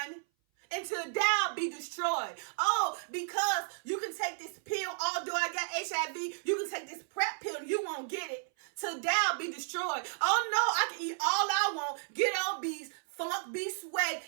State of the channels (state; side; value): silent; left; 56 dB below the other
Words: until thou be destroyed. Oh, because you can take this pill, although I got HIV, you can take this PrEP pill and you won't get it. Till thou be destroyed. Oh no, I can eat all I want, get obese, funk, be sweat,